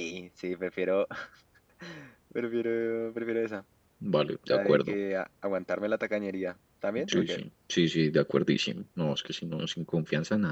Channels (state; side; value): identical; both; correlation 1.00